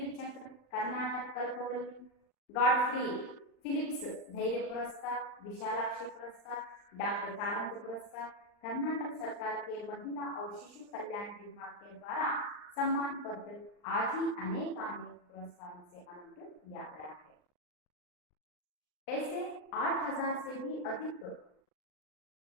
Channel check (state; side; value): late; right; 39 ms